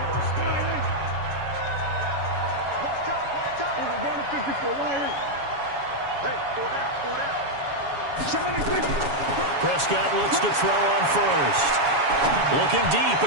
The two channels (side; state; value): left; late; 7.1 ms